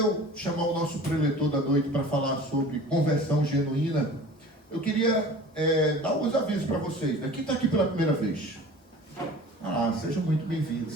chamar o nosso preletor da noite para falar sobre conversão genuína, eu queria dar alguns avisos para vocês. Quem está aqui pela primeira vez? Sejam muito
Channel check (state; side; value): normal; both; correlation 0.42